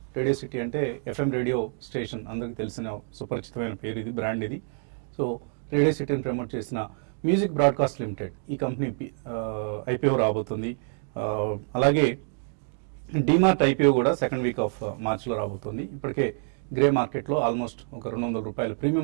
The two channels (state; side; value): silent; left; 60 dB below the other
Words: అంటే FM రేడియో స్టేషన్, అందరికి తెలిసిన సుపరిచితమైన పేరు ఇది, బ్రాండ్ ఇది. సో రేడియో సిటీని ప్రమోట్ చేసిన మ్యూజిక్ బ్రాడ్కాస్ట్ లిమిటెడ్ ఈ కంపెనీ IPO రాబోతుంది. అలాగే డిమార్ట్ IPO కూడా సెకండ్ వీక్ ఆఫ్ మార్చ్లో రాబోతుంది. ఇప్పటికే గ్రే మార్కెట్లో ఆల్మోస్ట్ ఒక ₹200